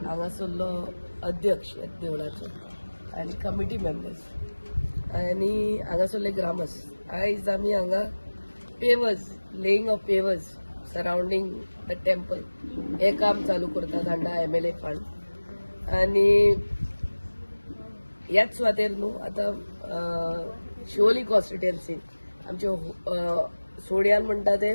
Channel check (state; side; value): inverted; both; correlation -1.00